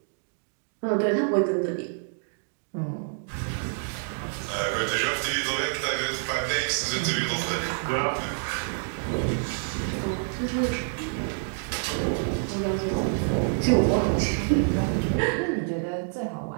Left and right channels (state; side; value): silent; left; digital silence